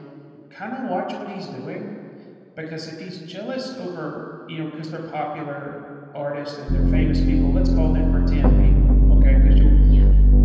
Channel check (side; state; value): both; identical; correlation 1.00